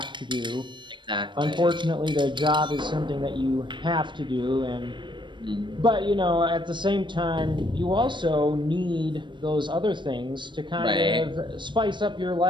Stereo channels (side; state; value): left; late; 0.23 ms